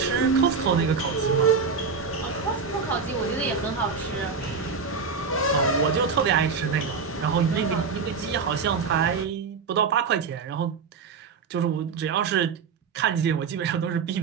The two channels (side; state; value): left; quieter; 5.4 dB